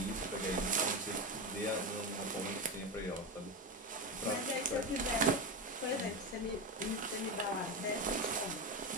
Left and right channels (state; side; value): normal; both; correlation 0.17